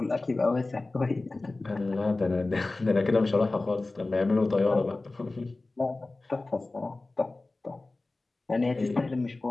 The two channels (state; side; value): quieter; right; 3.2 dB